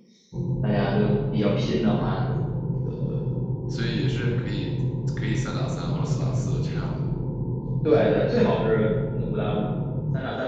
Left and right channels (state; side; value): identical; both; correlation 1.00